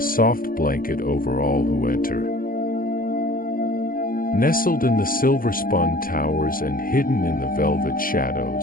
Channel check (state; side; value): late; right; 0.41 ms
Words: soft blanket over all who enter. Nestled in the silver-spun towers and hidden in the velvet